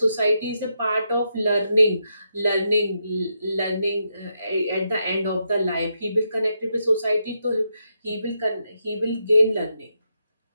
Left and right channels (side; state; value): both; inverted; correlation -0.82